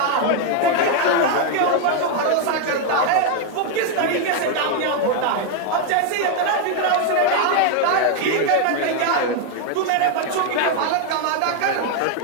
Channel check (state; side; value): different; both; correlation 0.01